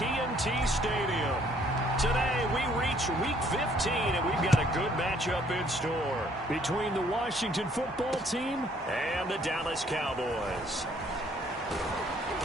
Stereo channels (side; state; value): both; normal; correlation 0.63